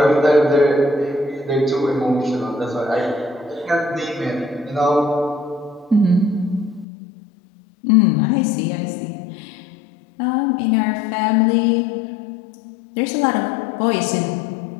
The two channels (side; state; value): right; drops out; at 6.9 s